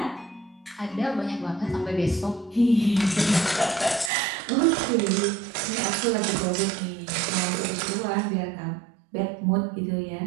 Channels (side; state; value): left; drops out; at 4.1 s